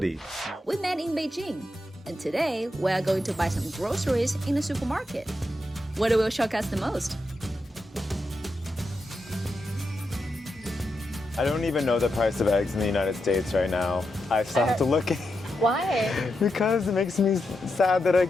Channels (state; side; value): normal; both; correlation 0.86